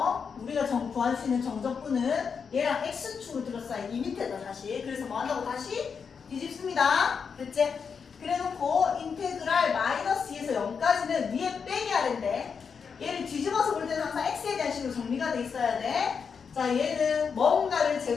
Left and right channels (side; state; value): right; quieter; 6.1 dB